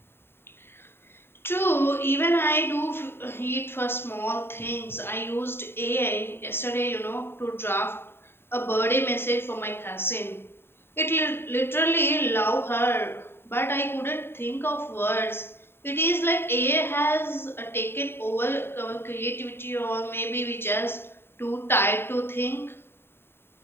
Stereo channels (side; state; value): right; late; 0.11 ms